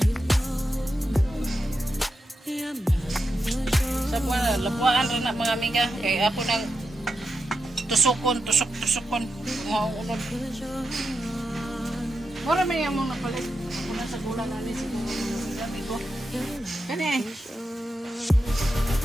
Sa mga lapuan rin na mga amiga. Kaya ako nang tusukon. Mga unod. Mura may among napalit. Ako na sa gulang namin siguro. Amigo. Kani eh.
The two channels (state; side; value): normal; both; correlation 0.88